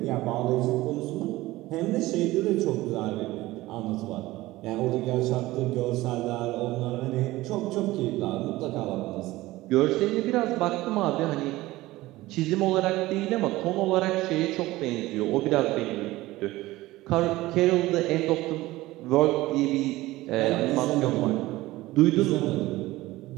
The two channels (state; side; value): quieter; left; 18.1 dB